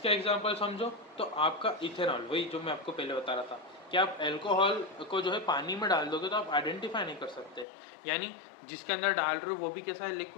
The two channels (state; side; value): drops out; right; at 7.7 s